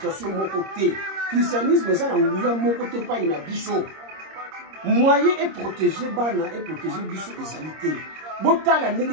de mon côté. Christianisme est mon côté, pas une biso. Moyen est protégé, bana est protégé, biso et salité. Botala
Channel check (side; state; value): left; late; 26 ms